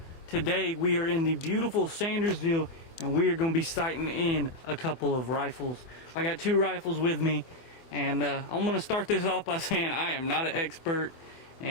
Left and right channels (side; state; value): right; late; 24 ms